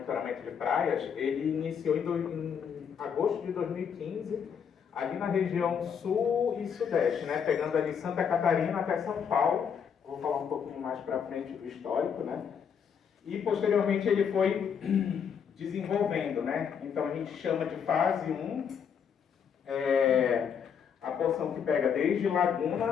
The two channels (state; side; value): quieter; right; 7.3 dB